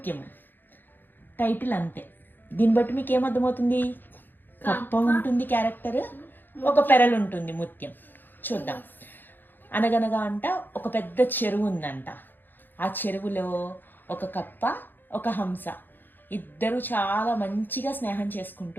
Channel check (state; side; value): late; right; 0.092 ms